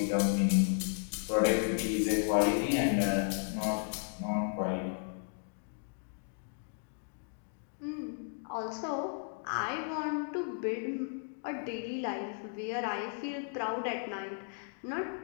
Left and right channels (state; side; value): silent; right; 55 dB below the other